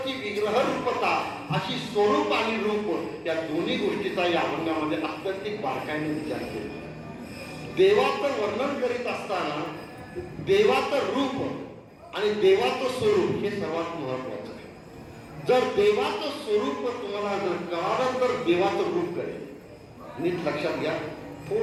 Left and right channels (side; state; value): both; identical; correlation 1.00